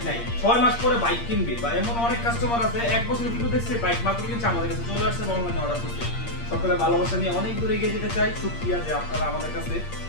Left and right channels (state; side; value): late; right; 8.6 ms